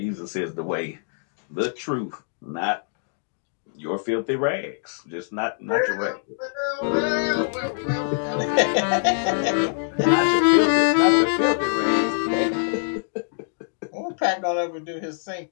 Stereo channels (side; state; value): right; silent; digital silence